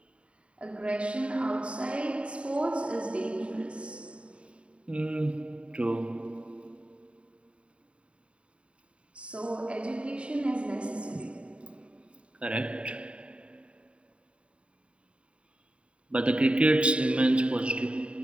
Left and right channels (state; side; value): late; left; 0.059 ms